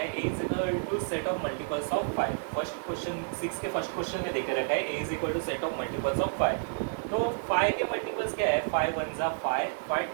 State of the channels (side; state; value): left; silent; digital silence